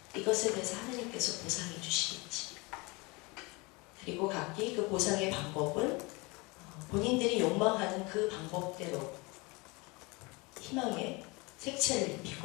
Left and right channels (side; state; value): right; quieter; 26.4 dB